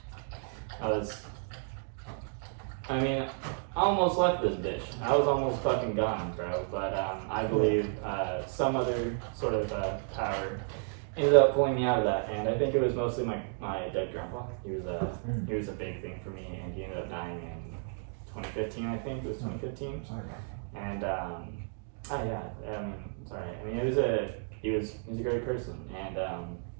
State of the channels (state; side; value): silent; left; 56 dB below the other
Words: I almost left this bitch. I was almost fucking gone, bro. But I believe some other sort of power ended up pulling me out of that, and I think it was mostly my dead grandpa. He was a big thing for me, and he ended up dying in 2015. I think it was 2015. And sorry. He was a great person, and